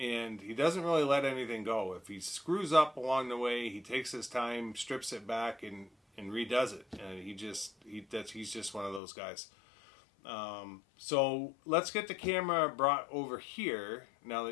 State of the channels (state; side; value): drops out; right; at 9.0 s